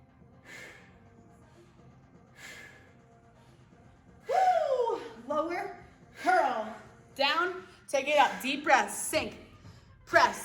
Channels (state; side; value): identical; both; correlation 1.00